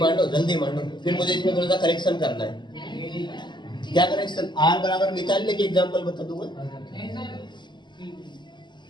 जल्दी मांडो। फिर मुझे इसमें थोड़ा सा करेक्शन करना है। क्या करेक्शन, R बराबर निकालने के एग्जाम्पल बता दूंगा।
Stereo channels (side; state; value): right; late; 0.22 ms